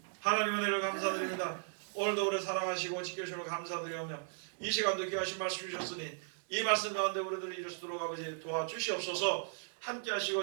하나님의 은혜를 감사드립니다. 오늘도 우리를 사랑하시고 지켜주시고 감사드리며 이 시간도 귀하신 말씀 주셨으니 이 말씀 가운데 우리들이 이룰 수 있도록 아버지 도와주시옵소서. 함께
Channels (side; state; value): left; silent; digital silence